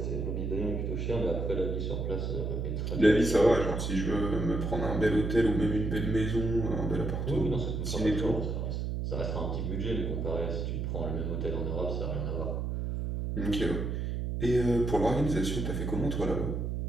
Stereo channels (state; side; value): noise; right; hum, 2 dB below the sound